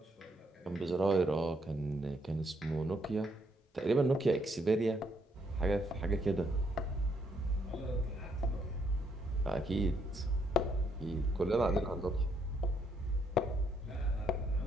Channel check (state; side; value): normal; both; correlation 0.73